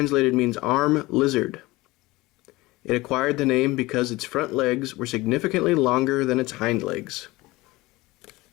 means arm lizard. It acquired the name because its front legs were significantly longer than its hind legs.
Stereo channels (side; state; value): right; quieter; 20.5 dB